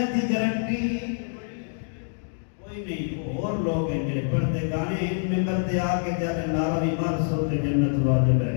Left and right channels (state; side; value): silent; right; digital silence